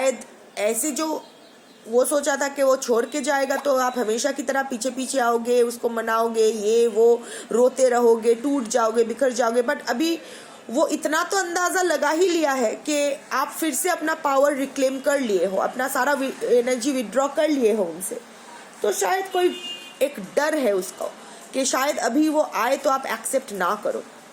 ऐसे जो वो सोचा था कि वो छोड़ के जाएगा तो आप हमेशा की तरह पीछे पीछे आओगे, उसको मनाओगे, ये वो रोते रहोगे, टूट जाओगे, बिखर जाओगे। बट अभी वो इतना तो अंदाजा लगा ही लिया है कि आप फिर से अपना पावर रिक्लेम कर लिए हो, अपना सारा एनर्जी विड्रॉ कर लिए हो उनसे। तो शायद कोई एक डर है उसको कि शायद अभी वो आए तो आप एक्सेप्ट ना करो।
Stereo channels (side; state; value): both; identical; correlation 1.00